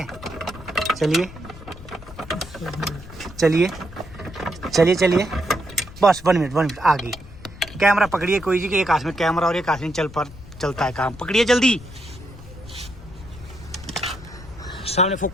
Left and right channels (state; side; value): noise; left; rumble, 16 dB below the sound